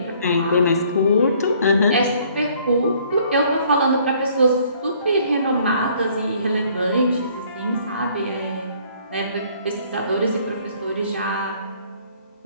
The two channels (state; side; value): inverted; both; correlation -0.60